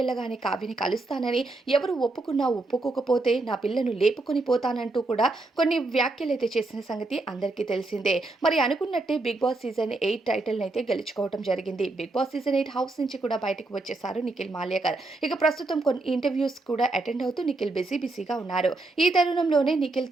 కావ్యని కలుస్తానని, ఎవరు ఒప్పుకున్నా ఒప్పుకోకపోతే నా పిల్లను లేపుకొని పోతానంటూ కూడా కొన్ని వ్యాఖ్యలైతే చేసిన సంగతి అందరికీ తెలిసిందే. మరి అనుకున్నట్టే 'బిగ్ బాస్' సీజన్ 8 టైటిల్‌నైతే గెలుచుకోవడం జరిగింది. 'బిగ్ బాస్' సీజన్ 8 హౌస్ నుంచి కూడా బయటకు వచ్చేసారు నిఖిల్ మాల్యాకర్. ఇక ప్రస్తుతం కొన్ని ఇంటర్వ్యూస్ కూడా అటెండ్ అవుతూ నిఖిల్ బిజీగా ఉన్నారు. ఈ తరుణంలోనే నిఖిల్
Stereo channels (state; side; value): quieter; left; 3.1 dB